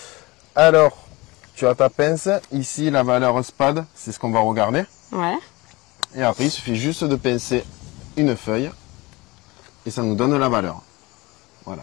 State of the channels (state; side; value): quieter; right; 22.5 dB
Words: Alors, tu as ta pince, ici la valeur spade, c'est ce qu'on va regarder. Ouais. Et après, il suffit juste de pincer une feuille et ça nous donne la valeur. Voilà.